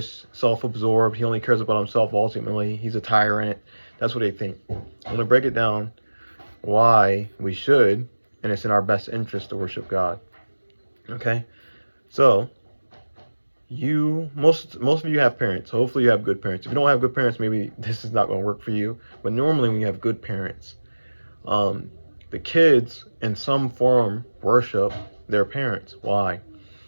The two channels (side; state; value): both; inverted; correlation -1.00